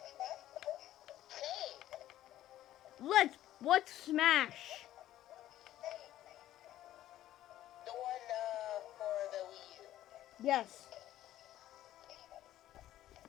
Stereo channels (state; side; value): quieter; right; 13.4 dB